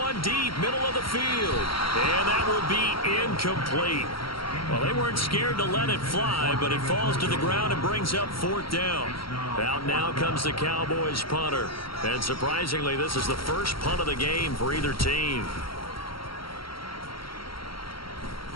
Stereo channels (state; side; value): late; right; 0.74 ms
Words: deep, middle of the field. And that will be incomplete. Well, they weren't scared to let it fly, but it falls to the ground and brings up 4th down. Out now comes the Cowboys punter. And surprisingly, this is the first punt of the game for either team.